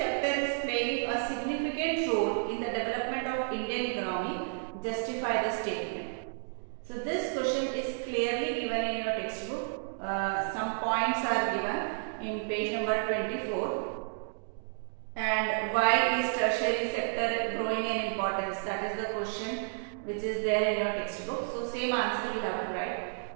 sector is playing a significant role in the development of Indian economy. Justify the statement. So this question is clearly given in your textbook. Some points are given in page number 24. And why is tertiary sector growing in importance? That is the question which is there in your textbook. So same answer you have to write.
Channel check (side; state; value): left; silent; digital silence